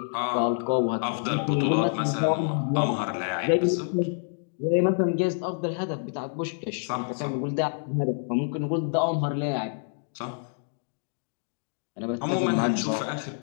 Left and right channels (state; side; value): silent; right; 60 dB below the other